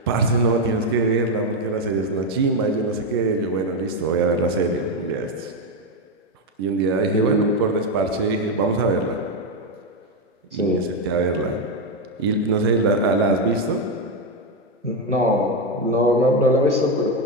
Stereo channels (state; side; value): normal; both; correlation 0.07